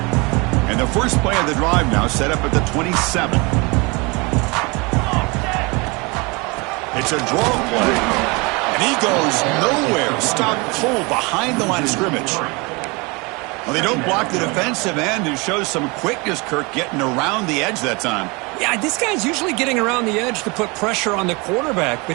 And the first play of the drive now set up at the 27. It's a draw play, and he goes nowhere. Stopped cold behind the line of scrimmage. Well, they don't block the defensive end, who shows some quickness, Kirk, getting around the edge that time. Yeah, this guy's usually getting around the edge to put pressure on the quarterback, but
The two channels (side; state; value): left; quieter; 27.5 dB